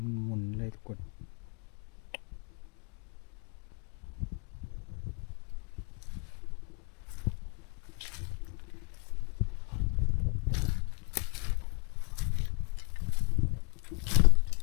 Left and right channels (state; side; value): quieter; right; 32.2 dB